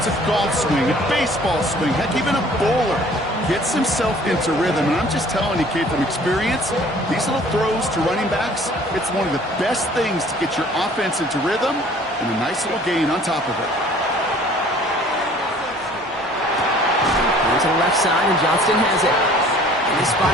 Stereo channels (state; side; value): normal; both; correlation 0.53